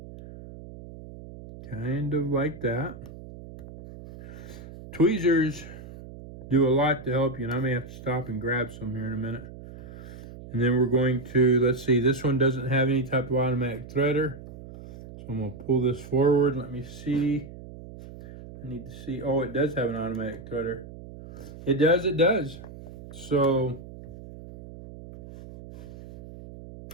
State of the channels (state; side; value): noise; right; hum, 15 dB below the sound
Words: Kind of like that. Tweezers do a lot to help you, and I may have to stop and grab some here in a minute. And then we're going to, let's see, this one doesn't have any type of automatic threader. So I'm going to pull this forward. Let me see. I need to see. Oh, it does have an automatic threader. It does. So,